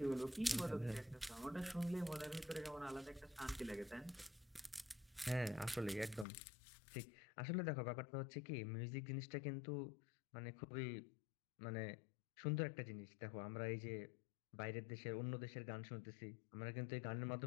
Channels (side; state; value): right; drops out; at 6.2 s